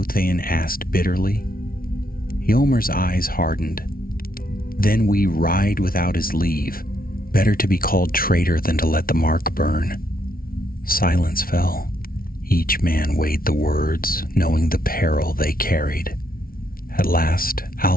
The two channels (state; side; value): late; right; 0.43 ms